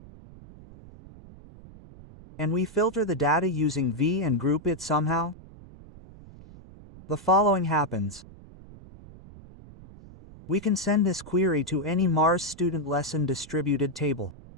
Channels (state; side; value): noise; right; rumble, 19 dB below the sound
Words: And we filter the data using V and group it somehow? The following happens. We can send this query to any Mars Student Lesson distributed table.